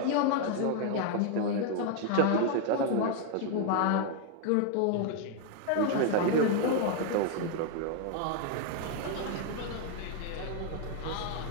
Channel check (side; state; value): both; different; correlation 0.01